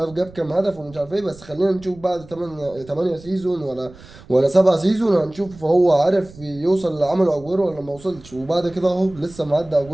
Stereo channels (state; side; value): noise; right; rumble, 21 dB below the sound